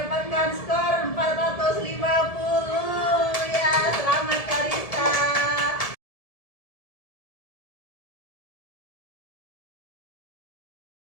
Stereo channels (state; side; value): late; right; 1.7 ms